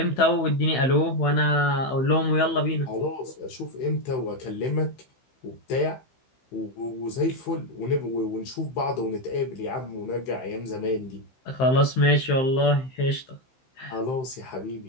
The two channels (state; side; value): late; right; 15 ms